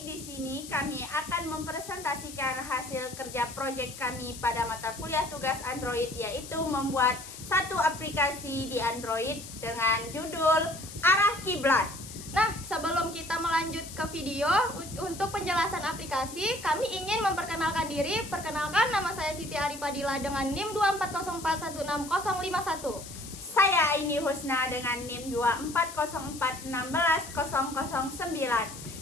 di sini kami akan mempresentasikan hasil kerja proyek kami pada mata kuliah tugas Android, yaitu membuat satu aplikasi di Android dengan judul Arah Kiblat. Nah, sebelum kita melanjut ke video, untuk penjelasan aplikasi, kami ingin memperkenalkan diri. Perkenalkan, nama saya Siti Aripadila dengan NIM 240416051. Saya Aini Husna dengan NIM 24041610009.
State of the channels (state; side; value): noise; left; hiss, 13 dB below the sound